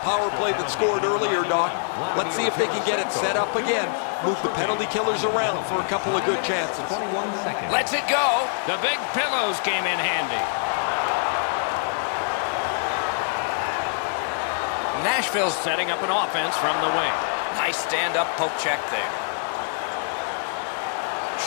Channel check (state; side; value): silent; right; digital silence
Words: play that scored earlier, Doc. Let's see if they can get it set up again. Move the penalty killers around for a couple of good chances. Let's it go. The big pillows came in handy. Nashville's setting up an offense from the wing. Nice stand-up poke check there.